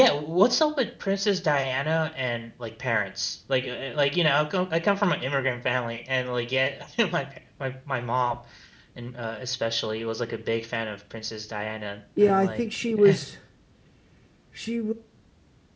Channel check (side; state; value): both; identical; correlation 1.00